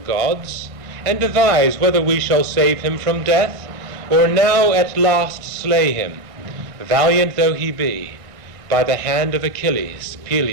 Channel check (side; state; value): left; late; 1.9 ms